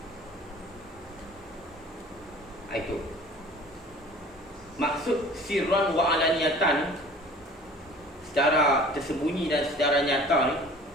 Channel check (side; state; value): both; normal; correlation 0.46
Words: Itu. Maksud sirran wa alaniyatan, secara tersembunyi dan secara nyata ni,